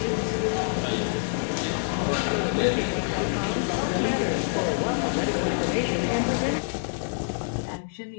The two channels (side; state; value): right; silent; digital silence